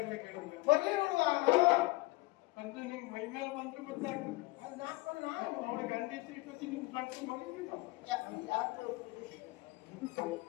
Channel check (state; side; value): quieter; right; 21.8 dB